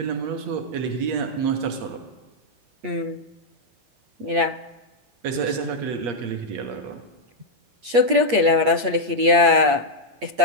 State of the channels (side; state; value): left; late; 8.4 ms